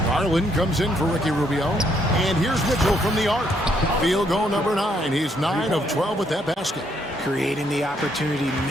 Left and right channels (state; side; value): normal; both; correlation 0.72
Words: Garland comes in for Ricky Rubio. And here's Mitchell from the arc. Field goal number 9. He's 9 of 12 with that basket. Creating the opportunity,